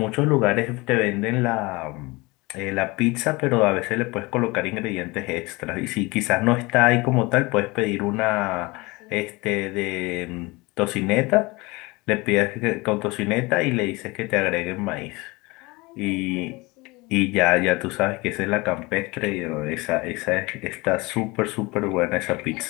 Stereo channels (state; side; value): quieter; right; 23.8 dB